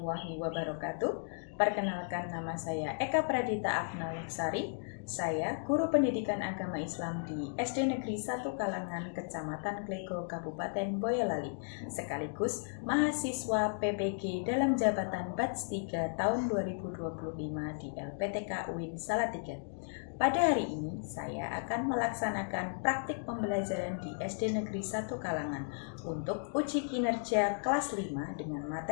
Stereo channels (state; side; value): silent; right; digital silence